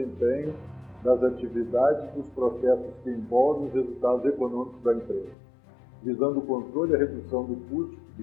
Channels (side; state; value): right; drops out; at 5.4 s